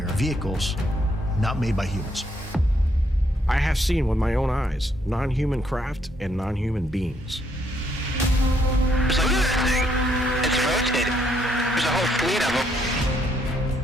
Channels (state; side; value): normal; both; correlation 0.72